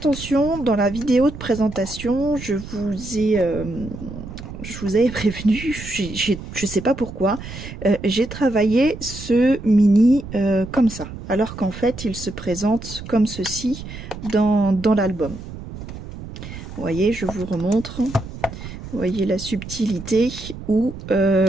dans la vidéo de présentation, je vous avais prévenu, je sais pas pourquoi, j'ai travaillé ce mini comme ça. Alors qu'en fait, il se présente comme ceci dans l'album. Vous voyez, je vous remontre. Vous voyez la subtilité où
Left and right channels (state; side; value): noise; right; rumble, 12 dB below the sound